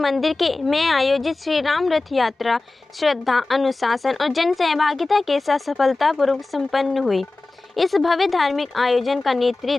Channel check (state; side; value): quieter; right; 3.3 dB